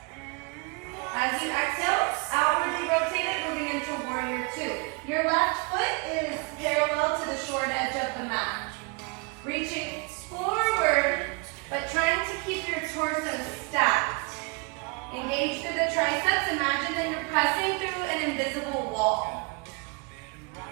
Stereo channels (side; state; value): left; quieter; 31.3 dB